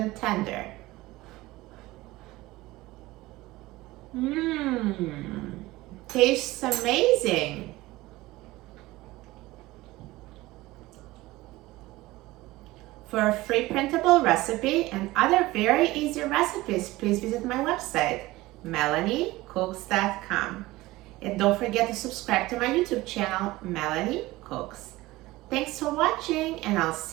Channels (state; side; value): quieter; left; 18.9 dB